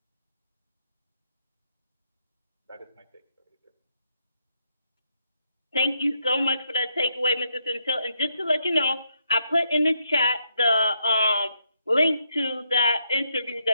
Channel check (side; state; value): both; inverted; correlation -0.78